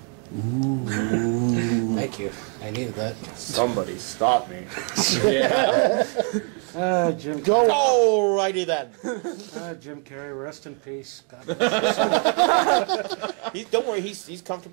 Ooh. Thank you. I needed that. Somebody stop me. Jim. Go. Alrighty then. Jim Carrey, rest in peace. God Don't worry, he's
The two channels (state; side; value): quieter; left; 38.7 dB